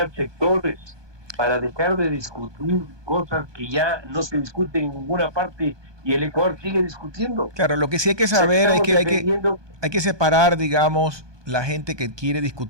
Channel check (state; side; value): late; left; 1.2 ms